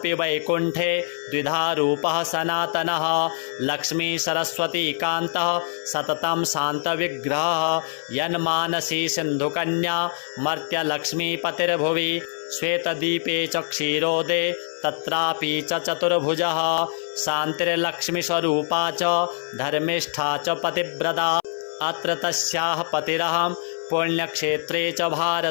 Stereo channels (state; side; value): silent; right; 60 dB below the other